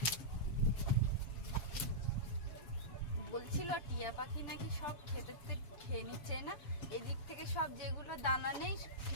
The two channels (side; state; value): right; late; 7.1 ms